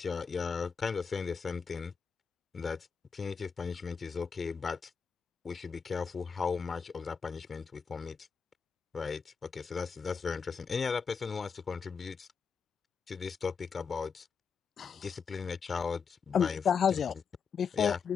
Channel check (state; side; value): quieter; right; 5.9 dB